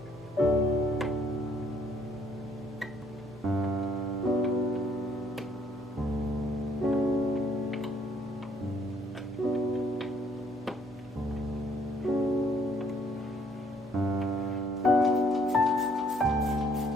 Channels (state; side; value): noise; right; hum, 26 dB below the sound